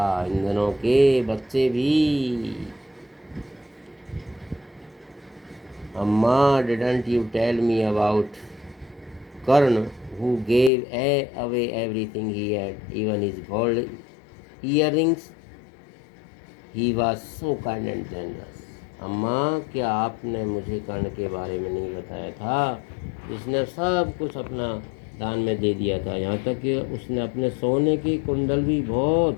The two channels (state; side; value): drops out; right; at 10.7 s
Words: इन दिनों के बच्चे भी। अम्मा, didn't you tell me about Karna who gave away everything he had, even his gold earrings? He was so kind and generous. अम्मा, क्या आपने मुझे कर्ण के बारे में नहीं बताया था? जिसने सब कुछ अपना दान में दे दिया था, यहाँ तक कि उसने अपने सोने के कुंडल भी